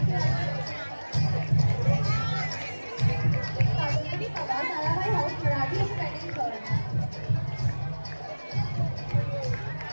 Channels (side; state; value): both; inverted; correlation -1.00